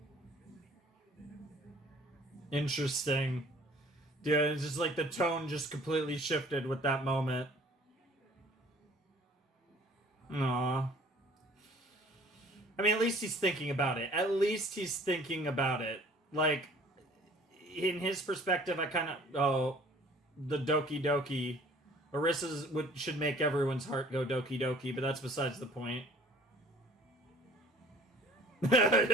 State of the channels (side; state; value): both; normal; correlation 0.51